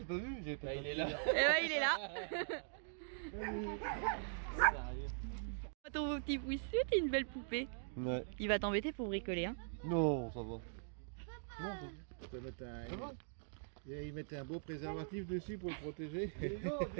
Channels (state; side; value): silent; left; digital silence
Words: pas vu, j'ai pas. Il est là. Eh ouais, il est là. Sérieux. Ton petit pouce, t'es une belle poupée. Ouais. Il va t'embêter pour bricoler, hein. Non, ça va. Non, Tu peux mettre un... ça va. Ils mettent un beau préservatif dessus pour le protéger.